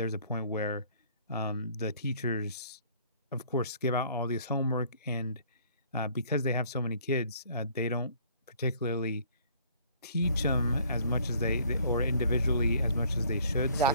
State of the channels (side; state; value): both; inverted; correlation -0.58